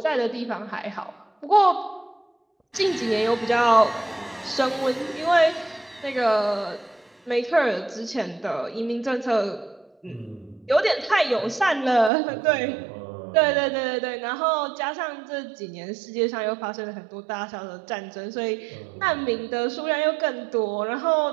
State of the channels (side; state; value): left; drops out; at 12.1 s